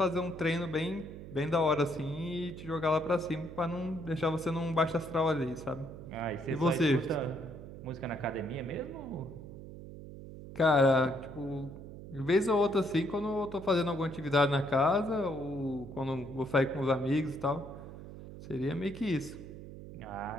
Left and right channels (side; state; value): right; noise; hum, 13 dB below the sound